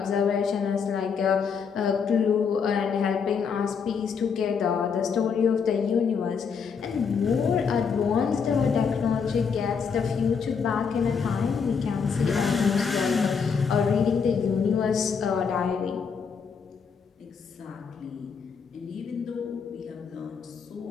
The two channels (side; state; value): right; quieter; 6.1 dB